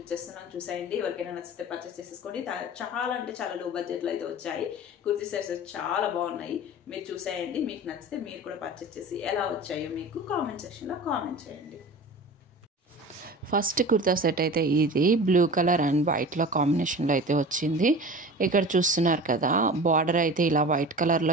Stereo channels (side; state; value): both; normal; correlation 0.36